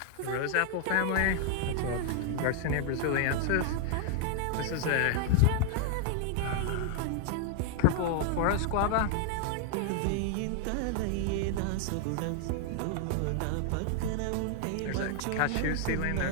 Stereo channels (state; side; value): different; both; correlation 0.00